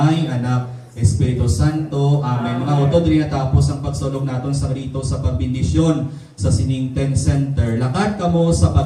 Anak, Espiritu Santo. Amen. Mga utod, rin natapos ang pagsulog natin sa rito sa pagbindisyon sa Siningten Center. Lakat kamo sa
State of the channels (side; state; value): both; identical; correlation 1.00